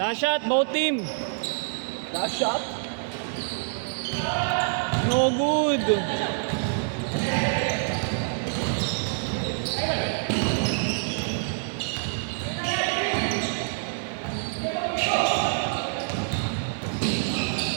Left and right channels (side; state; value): left; silent; digital silence